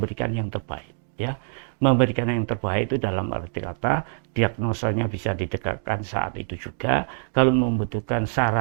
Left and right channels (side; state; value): left; silent; digital silence